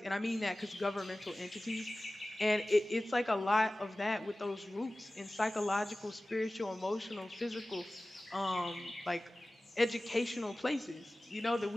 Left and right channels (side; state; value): both; normal; correlation 0.97